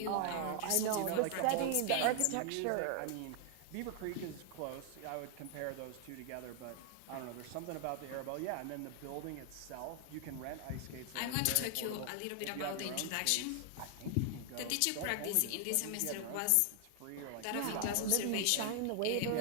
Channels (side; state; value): both; different; correlation 0.00